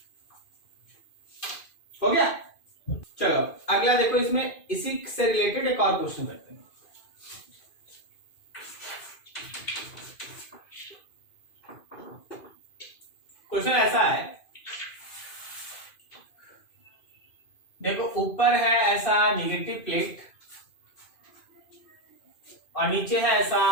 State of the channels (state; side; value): late; right; 2.5 ms